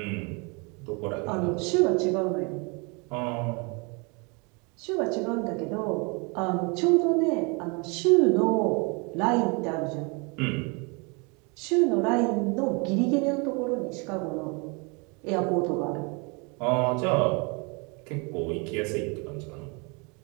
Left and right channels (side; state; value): left; quieter; 31.3 dB